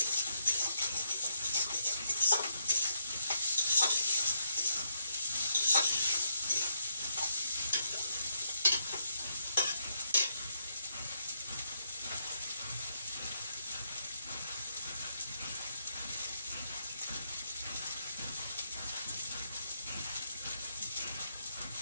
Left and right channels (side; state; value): both; inverted; correlation -0.77